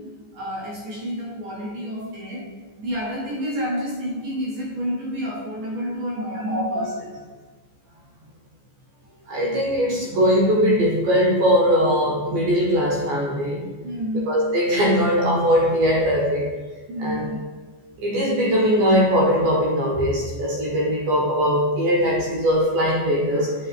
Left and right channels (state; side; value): late; left; 14 ms